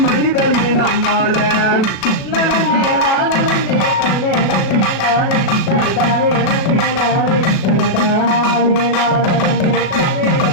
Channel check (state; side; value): late; right; 36 ms